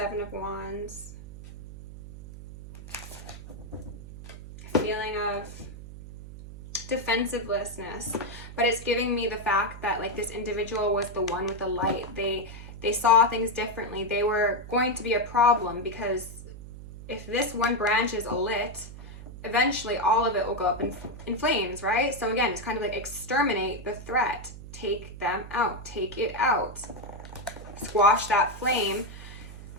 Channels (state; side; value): noise; right; hum, 13 dB below the sound